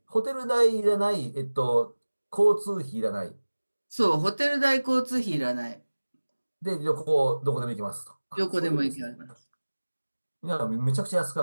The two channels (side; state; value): both; inverted; correlation -1.00